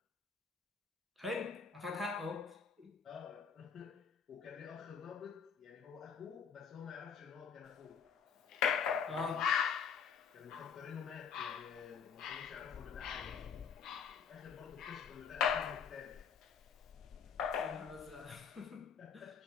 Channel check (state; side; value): quieter; right; 6.7 dB